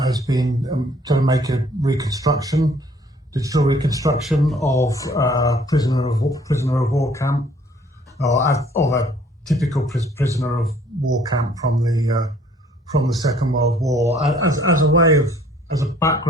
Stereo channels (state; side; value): normal; both; correlation 0.58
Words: has been to make a reconstruction, digital reconstruction of prisoner of war camp, or a typical prisoner of war camp from the Second World War, as a way of, as a